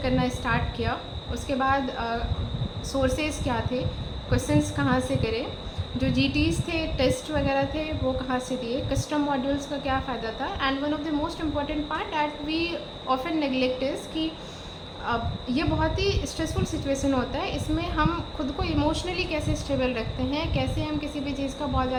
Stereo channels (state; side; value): identical; both; correlation 1.00